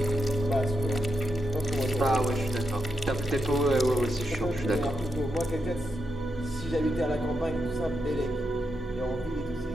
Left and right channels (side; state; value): both; normal; correlation 0.84